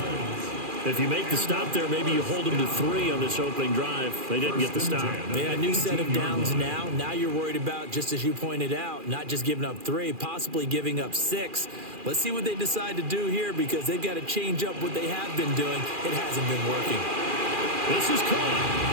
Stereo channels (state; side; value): late; left; 2.4 ms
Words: If you make the stop there, maybe you hold them to 3 on this opening drive. They didn't get the stop. Yeah, new set of downs now. Now you're worried about, just as you pointed out, not just giving up 3, possibly giving up 6. Let's see what they decide to do here because they've got to change up what they have been doing. It hasn't been working. This is caught.